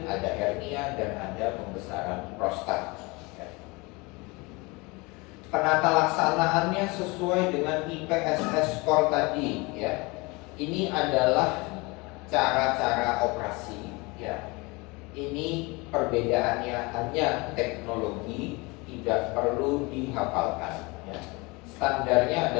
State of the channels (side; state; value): right; quieter; 25.7 dB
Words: ada hernia, dan ada pembesaran prostat. Penata laksanaannya sesuai dengan IPSS score tadi, ya. Ini adalah cara-cara operasi, ya. Ini perbedaannya hanya teknologi, tidak perlu dihafalkan, ya. Standarnya